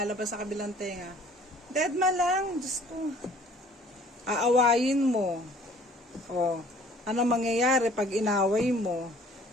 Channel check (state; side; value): normal; both; correlation 0.54